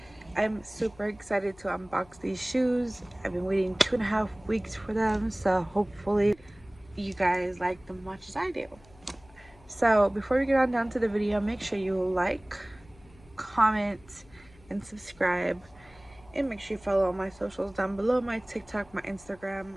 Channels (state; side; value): noise; left; hum, 25 dB below the sound